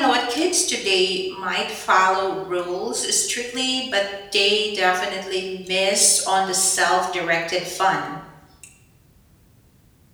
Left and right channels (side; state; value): both; identical; correlation 1.00